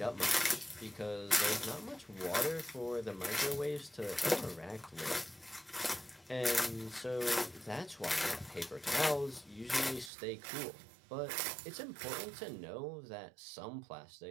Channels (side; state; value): left; drops out; at 10.1 s